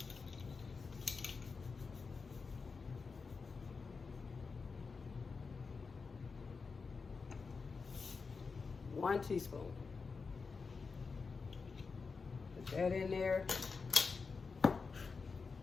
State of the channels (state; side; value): quieter; right; 4.8 dB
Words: One teaspoon. Put that in there.